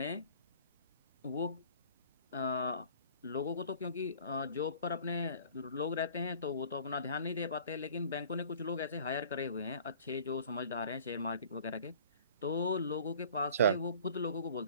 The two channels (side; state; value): both; inverted; correlation -0.49